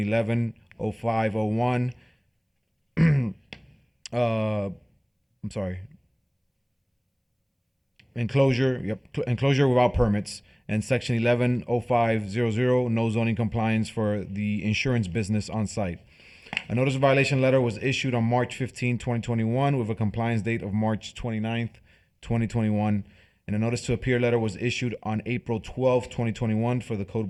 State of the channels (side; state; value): both; identical; correlation 1.00